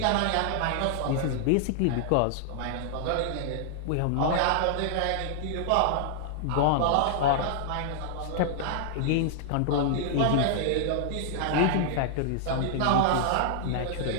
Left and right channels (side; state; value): both; different; correlation -0.01